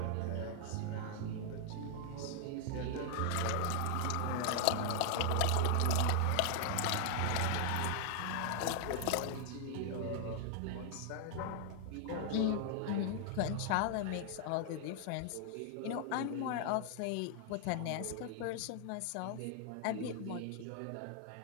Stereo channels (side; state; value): both; different; correlation 0.00